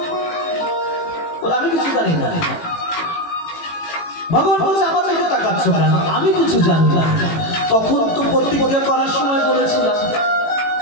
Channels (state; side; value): late; right; 18 ms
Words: আমি কিছু জানি না। ভগবান বলছে আমার দিকে তাকাচ্ছ কেন? আমি কিছু জানি না। তখন তো প্রতিজ্ঞা করার সময় বলেছিলাম।